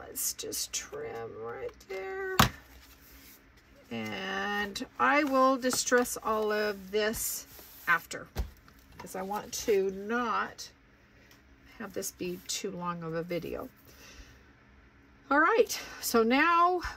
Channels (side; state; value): both; identical; correlation 1.00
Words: just trim right there. And I will distress all of this after, because I want to not have this be too long of a video. All right, so now